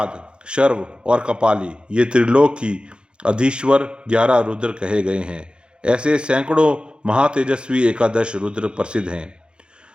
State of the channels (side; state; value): left; late; 0.052 ms